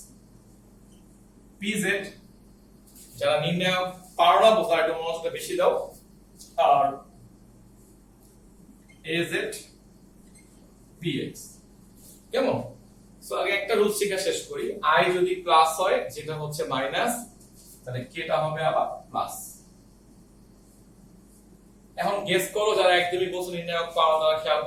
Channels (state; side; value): identical; both; correlation 1.00